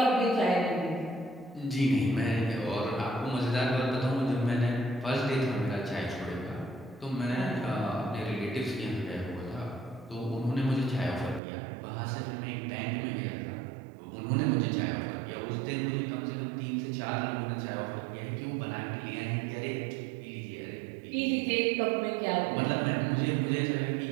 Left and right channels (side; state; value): left; drops out; at 11.4 s